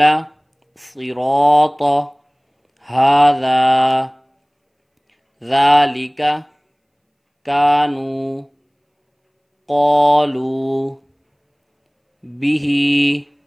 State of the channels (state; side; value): identical; both; correlation 1.00